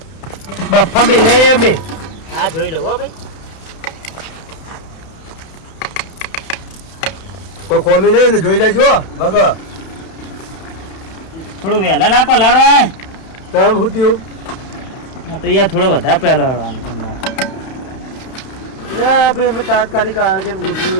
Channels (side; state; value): right; late; 31 ms